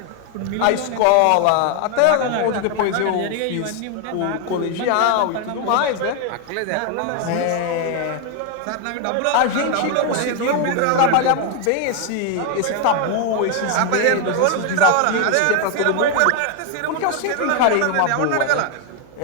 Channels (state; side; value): different; both; correlation 0.00